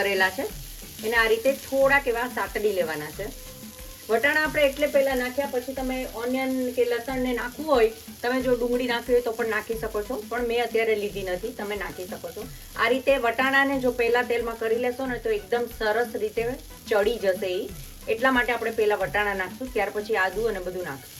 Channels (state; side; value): identical; both; correlation 1.00